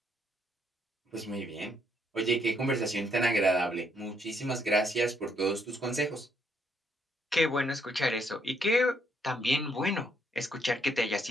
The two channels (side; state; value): both; normal; correlation 0.72